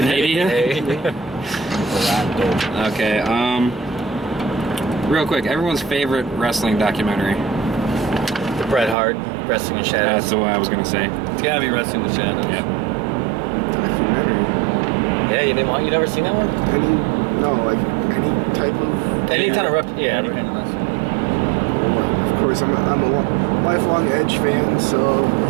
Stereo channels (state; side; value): drops out; left; at 9.0 s